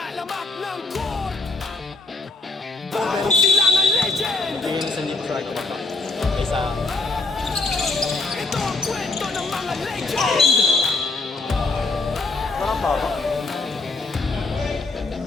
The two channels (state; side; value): quieter; right; 3.5 dB